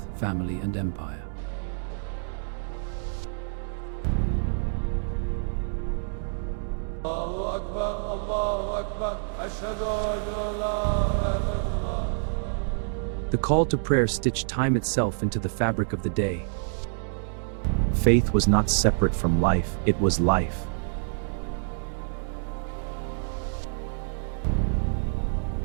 family, and empire. The call to prayer stitched time itself into the fabric of the day. Faith was not separate from life, it was life.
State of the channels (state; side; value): silent; left; digital silence